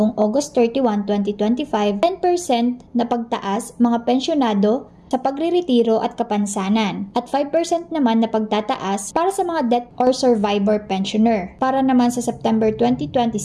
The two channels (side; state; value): both; identical; correlation 1.00